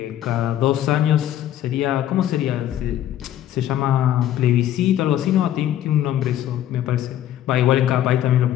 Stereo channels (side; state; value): right; quieter; 11.9 dB